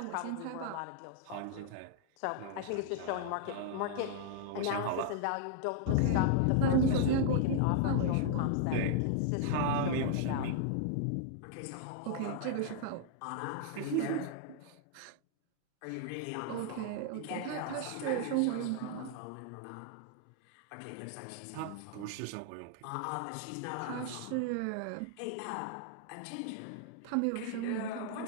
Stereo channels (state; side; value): different; both; correlation -0.01